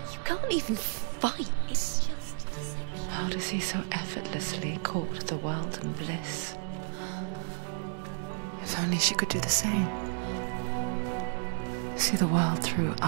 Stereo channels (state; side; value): silent; left; 57 dB below the other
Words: You can't even fight. It's just deception. How does he so effortlessly court the world and bliss? If only she could do the same. See the world through